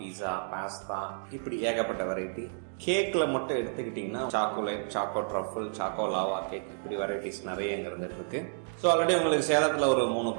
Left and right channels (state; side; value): silent; left; digital silence